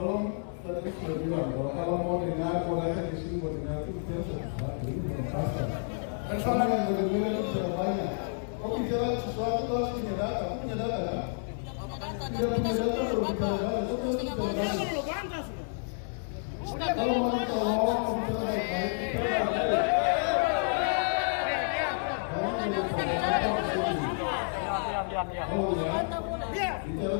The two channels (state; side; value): silent; right; digital silence